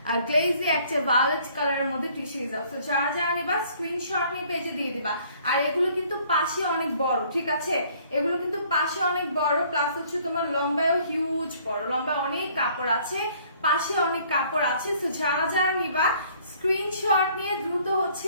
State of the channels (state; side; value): inverted; both; correlation -0.59